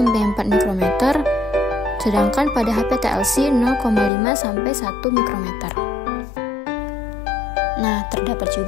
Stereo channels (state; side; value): drops out; right; at 4.1 s